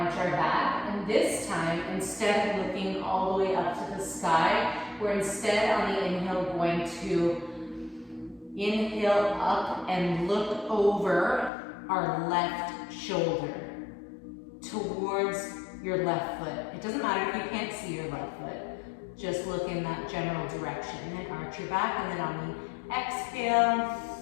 arch our back. And this time, instead of looking all the way up to the sky, we're instead on the inhale going to inhale up and look over our left shoulder towards your left foot. It doesn't matter if you can't see your left foot. Just look in that general direction. And then arch your back, and then on the exhale,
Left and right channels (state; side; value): drops out; right; at 11.5 s